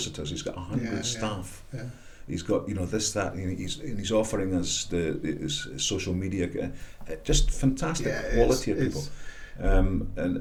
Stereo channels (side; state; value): both; identical; correlation 1.00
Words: He's got 100 staff. Yeah. He's got this, that, and he's offering us his social media, just fantastic quality of people,